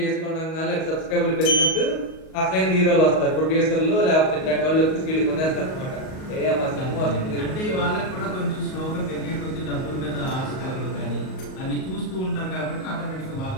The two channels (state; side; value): late; right; 38 ms